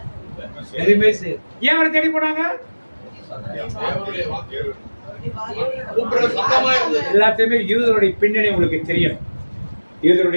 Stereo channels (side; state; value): both; inverted; correlation -1.00